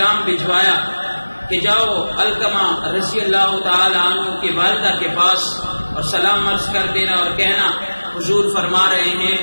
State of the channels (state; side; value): inverted; both; correlation -1.00